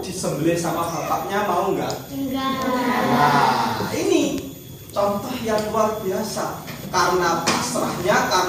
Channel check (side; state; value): both; identical; correlation 1.00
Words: disembelih sama bapaknya mau nggak? Enggak. Nah, ini contoh yang luar biasa. Karena pasrahnya,